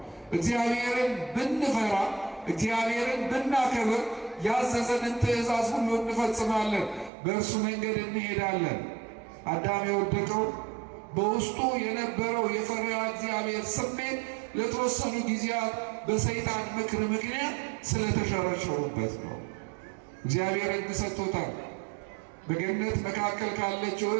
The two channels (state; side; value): drops out; left; at 7.1 s